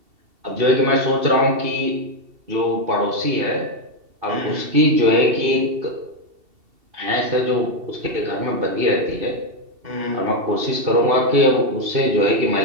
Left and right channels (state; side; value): late; left; 2.7 ms